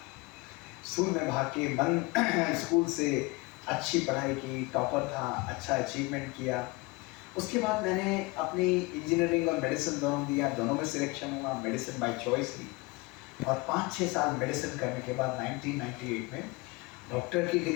स्कूल में भाग के मन स्कूल से अच्छी पढ़ाई की, टॉपर था, अच्छा अचीवमेंट किया। उसके बाद मैंने अपनी इंजीनियरिंग और मेडिसिन दोनों दिया, दोनों में सिलेक्शन हुआ, मेडिसिन बाय चॉइस ली। और 5-6 साल मेडिसिन करने के बाद 1998 में डॉक्टर की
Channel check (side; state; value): right; quieter; 24.2 dB